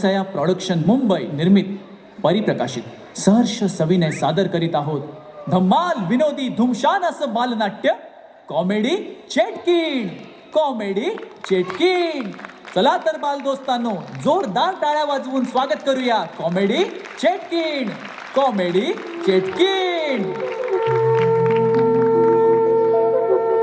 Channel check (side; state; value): both; identical; correlation 1.00